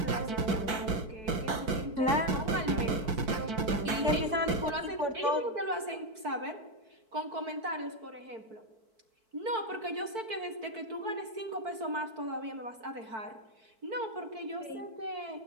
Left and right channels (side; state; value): left; late; 4.5 ms